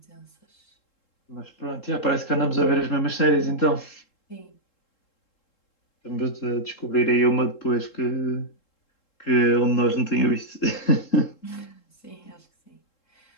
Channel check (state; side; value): late; right; 3.7 ms